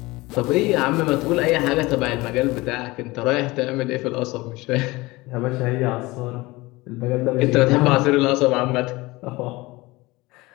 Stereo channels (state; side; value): quieter; right; 21.4 dB